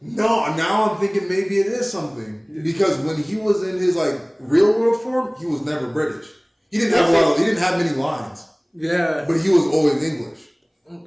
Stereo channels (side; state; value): both; identical; correlation 1.00